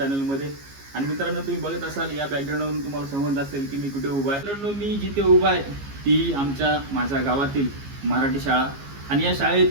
आणि मित्रांनो, तुम्ही बघत असाल या बॅकग्राऊंडवरून तुम्हाला समजत असेल की मी कुठे उभा आहे. मित्रांनो, मी जिथे उभा आहे ती माझ्या गावातील मराठी शाळा. आणि या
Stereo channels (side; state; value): left; late; 15 ms